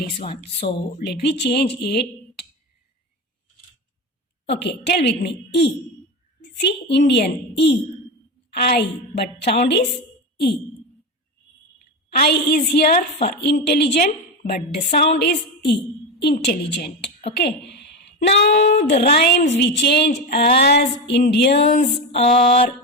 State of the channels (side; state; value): both; normal; correlation 0.18